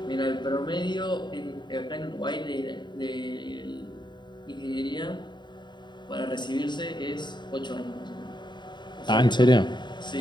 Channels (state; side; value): late; right; 0.22 ms